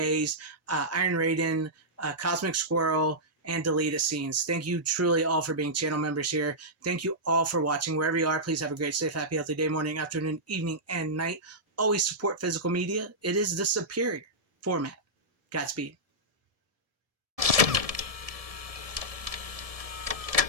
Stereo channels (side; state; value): left; late; 1.7 ms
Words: Iron Raiden, Cosmic Squirrel, and deleted scenes. Thank you truly all for being channel members here. Thank you all for watching. Wherever you are, please have a great, safe, happy, healthy day, morning, afternoon, evening, and night. Always support physical media. It is the superior format. Godspeed.